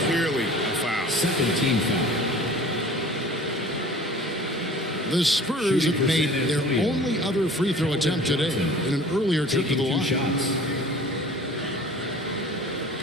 Clearly a foul. Second team foul. The Spurs have made their only other free throw attempt today in an earlier trip to the line. Shots.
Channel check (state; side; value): normal; both; correlation 0.46